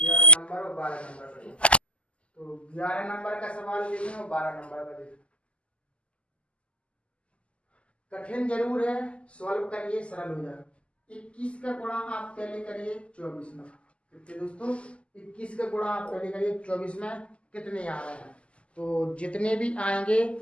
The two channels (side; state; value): right; late; 0.055 ms